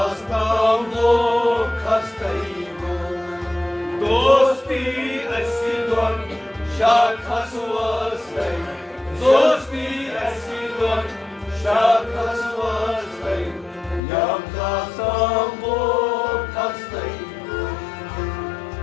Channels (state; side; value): drops out; right; at 14.0 s